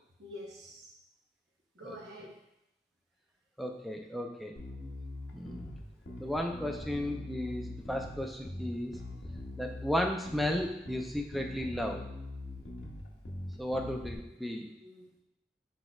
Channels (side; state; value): both; normal; correlation 0.86